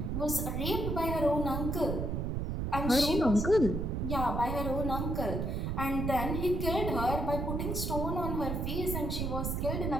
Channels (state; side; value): noise; right; rumble, 1 dB below the sound